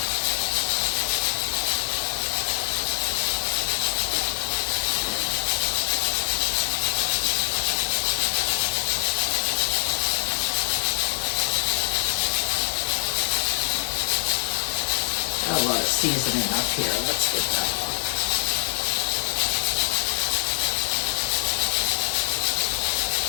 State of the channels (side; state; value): right; silent; 62 dB below the other